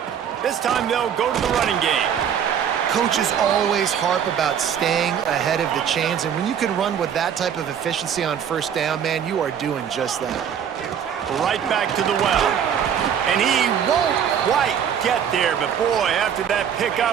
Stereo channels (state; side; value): quieter; left; 8.4 dB